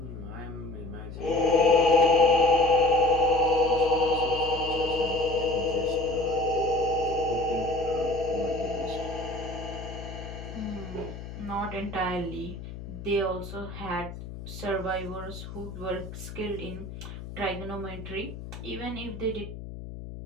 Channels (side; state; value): left; noise; hum, 11 dB below the sound